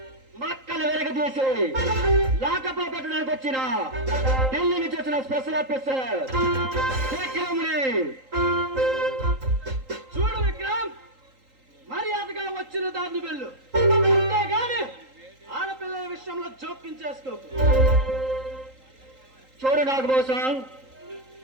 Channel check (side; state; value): left; late; 3.8 ms